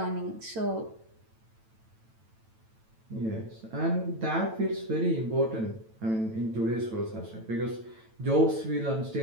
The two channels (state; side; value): late; left; 9.0 ms